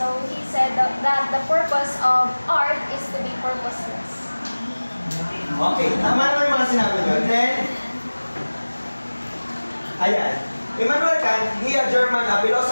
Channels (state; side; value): inverted; both; correlation -1.00